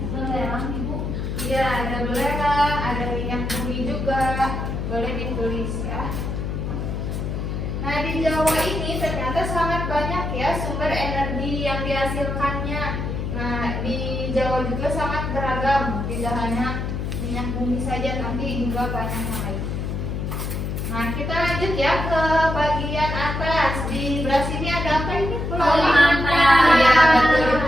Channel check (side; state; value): left; noise; hum, 3 dB below the sound